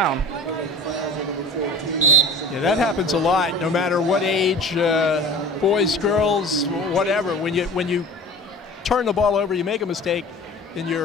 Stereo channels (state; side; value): normal; both; correlation 0.42